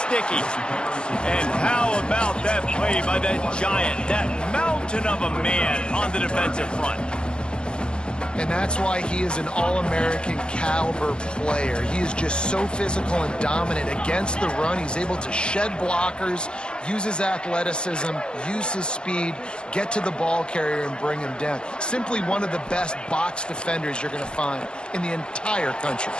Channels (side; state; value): right; late; 0.053 ms